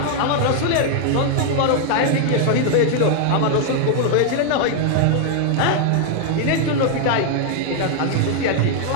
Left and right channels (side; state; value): both; different; correlation 0.00